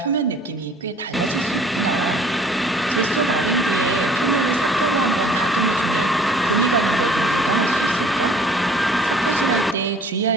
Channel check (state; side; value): normal; both; correlation 0.54